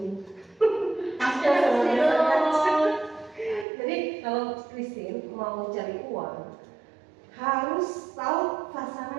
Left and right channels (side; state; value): left; drops out; at 3.7 s